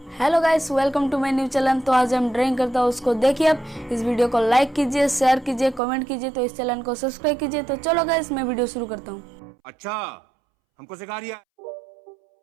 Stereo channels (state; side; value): drops out; left; at 5.8 s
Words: Hello guys, welcome to my new channel. तो आज हम ड्राइंग करता हूँ, उसको देखिए। आप इस वीडियो को लाइक कीजिए, शेयर कीजिए, कमेंट कीजिए, तो इस चैनल को सब्सक्राइब कीजिए। तो चलो गाइस, मैं वीडियो शुरू करता हूँ। अच्छा, हमको सिखा रिया।